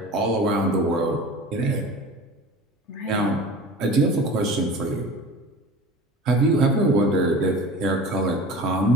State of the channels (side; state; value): both; normal; correlation 0.37